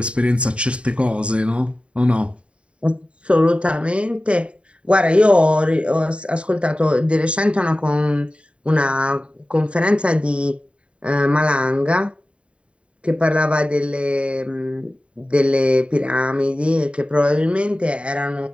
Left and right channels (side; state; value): left; late; 0.060 ms